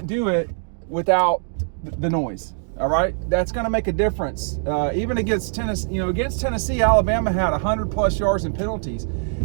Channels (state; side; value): silent; left; digital silence